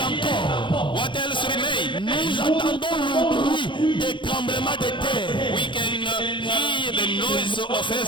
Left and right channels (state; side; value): late; right; 0.23 ms